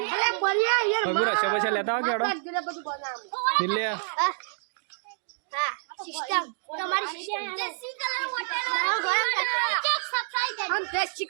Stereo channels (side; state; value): left; silent; digital silence